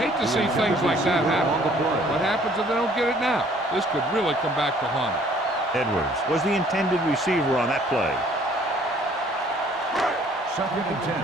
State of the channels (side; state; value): both; normal; correlation 0.58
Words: to see things like that happen. What happens if they don't get it now? This could really come back to haunt them. Edwards was the intended receiver on that play. Second and 10.